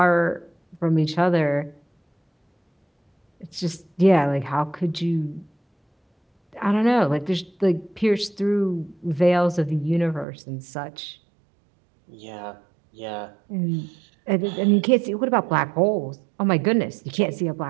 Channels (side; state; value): left; drops out; at 10.2 s